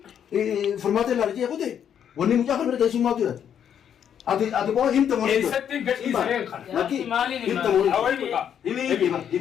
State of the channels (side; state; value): right; quieter; 8.8 dB